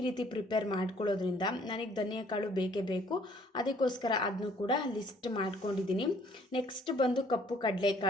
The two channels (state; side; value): normal; both; correlation 0.60